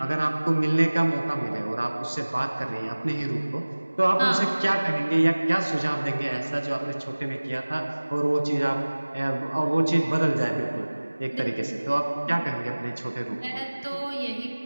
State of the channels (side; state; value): both; inverted; correlation -1.00